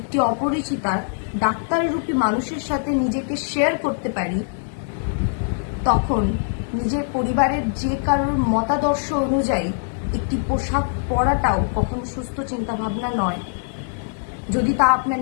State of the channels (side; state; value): right; silent; 61 dB below the other